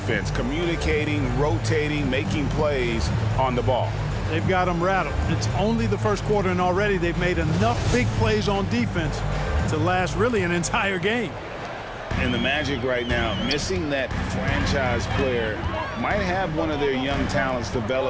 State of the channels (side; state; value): both; identical; correlation 1.00